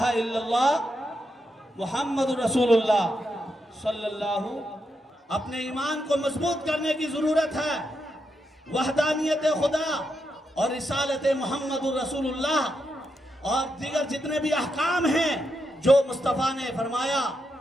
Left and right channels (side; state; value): both; normal; correlation 0.83